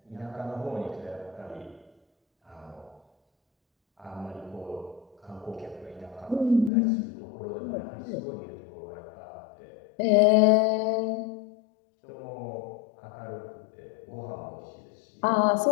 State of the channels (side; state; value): right; drops out; at 6.7 s